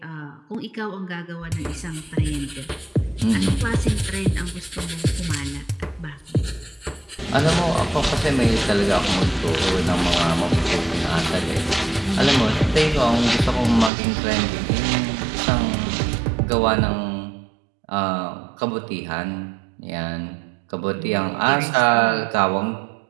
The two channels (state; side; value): drops out; left; at 13.9 s